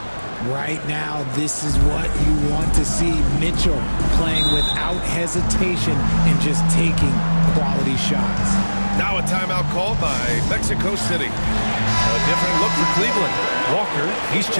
Right now, this is what you want to see. Mitchell playing without hesitation and just taking quality shots. Now a timeout called by Mexico City. A different look for Cleveland. Walker, he's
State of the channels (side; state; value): both; inverted; correlation -1.00